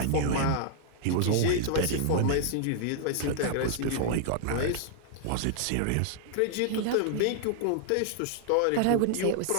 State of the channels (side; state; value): both; different; correlation 0.00